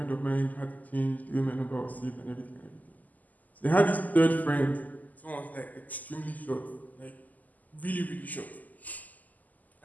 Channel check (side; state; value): right; late; 0.080 ms